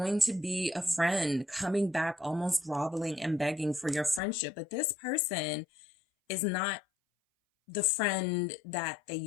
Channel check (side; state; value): right; drops out; at 4.2 s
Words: to be a friend coming back, almost groveling and begging for your friendship, but this person is not the friend that they